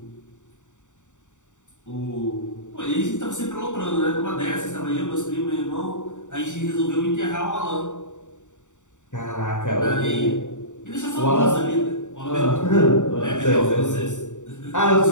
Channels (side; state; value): right; late; 0.85 ms